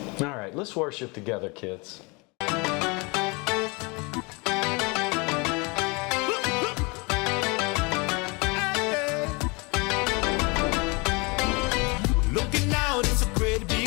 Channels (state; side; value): quieter; right; 28.5 dB